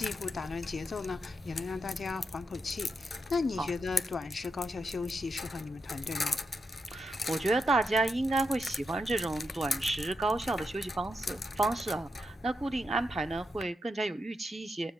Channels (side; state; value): both; normal; correlation 0.84